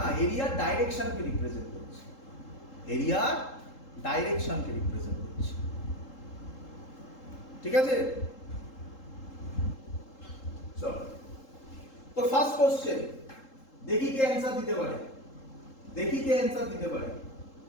এরিয়ার ডাইরেকশনকে রিপ্রেজেন্ট করছে, এরিয়ার ডাইরেকশনকে রিপ্রেজেন্ট করছে, ঠিক আছে? চলো তো ফার্স্ট কোশ্চেন, দেখি কে অ্যানসার দিতে পারে,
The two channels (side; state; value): right; late; 3.7 ms